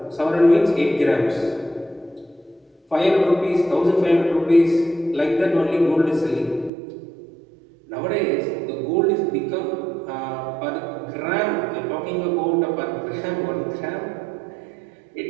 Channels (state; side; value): drops out; left; at 6.7 s